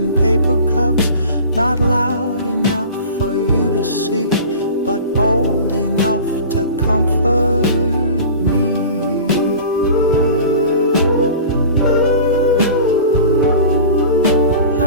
paper cups. Not loud enough for you to see, but bold enough to comfort me.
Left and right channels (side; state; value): both; inverted; correlation -0.39